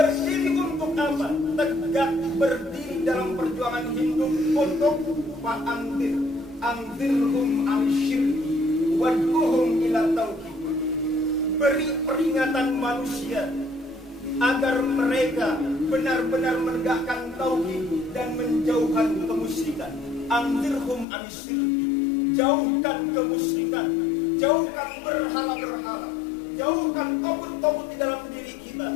untuk apa? Tegak berdiri dalam perjuangan hidup untuk fa'anzir, anzirhum al-syirki wad'uhum ila tauhid. Beri peringatan manusia agar mereka benar-benar menegakkan tauhid dan menjauhkan kemusyrikan. Anzirhum an-syirki, jauhkan kemusyrikan, jauhkan berhala-berhala, jauhkan togut-togut di dalam diri kita.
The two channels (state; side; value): drops out; right; at 21.1 s